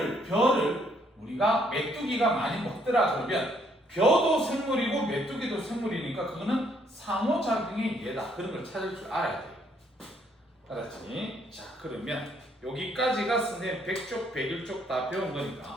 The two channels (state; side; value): normal; both; correlation 0.68